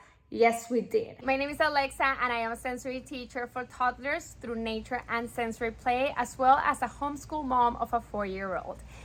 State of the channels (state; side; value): identical; both; correlation 1.00